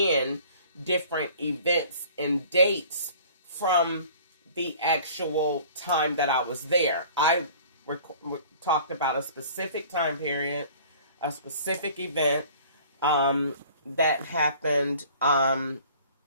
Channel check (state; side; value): inverted; both; correlation -0.49